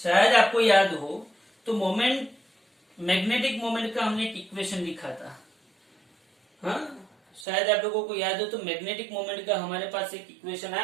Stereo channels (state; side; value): drops out; left; at 7.5 s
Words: हो, तो मोमेंट, मैग्नेटिक मोमेंट का हमने एक इक्वेशन लिखा था। हाँ, शायद आप लोगों को याद हो, तो मैग्नेटिक मोमेंट का हमारे पास एक इक्वेशन